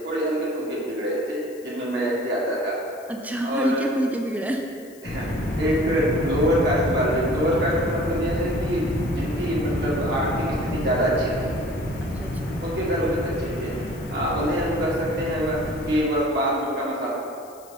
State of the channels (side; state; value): left; noise; hiss, 24 dB below the sound